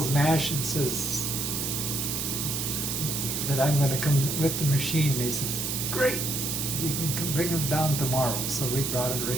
MASH and says that I'm going to come with the machine. And he says, great, you can come bring him down tomorrow. So we brought it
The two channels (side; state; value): right; noise; hiss, 1 dB below the sound